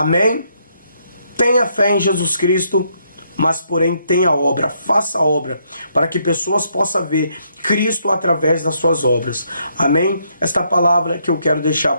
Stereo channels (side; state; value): both; inverted; correlation -0.73